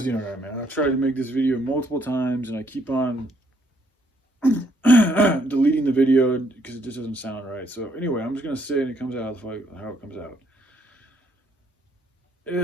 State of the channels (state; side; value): normal; both; correlation 0.70